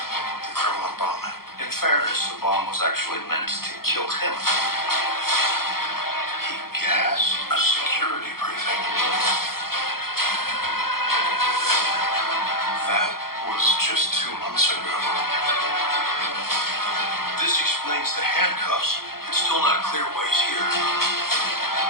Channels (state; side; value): late; right; 0.93 ms